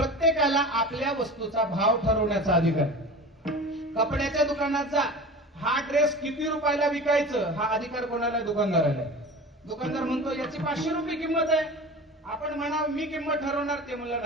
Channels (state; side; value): normal; both; correlation 0.34